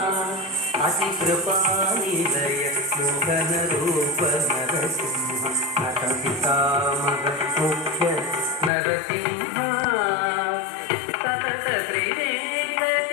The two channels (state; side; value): drops out; right; at 8.7 s